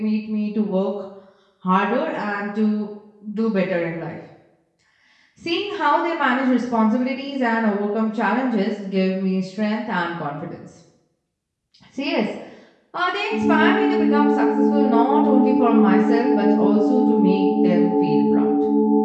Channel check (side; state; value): both; identical; correlation 1.00